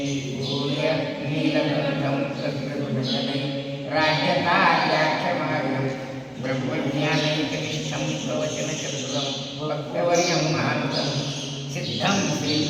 नीलकण्ठं तद्गुणगणै राज्यकार्याख्यमार्गं ब्रह्मज्ञानैकनिष्ठं प्रवचनचतुरं भक्तवर्यं महान्तं सिद्धं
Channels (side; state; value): both; identical; correlation 1.00